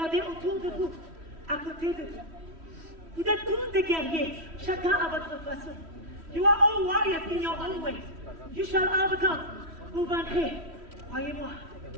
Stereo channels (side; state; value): left; late; 3.1 ms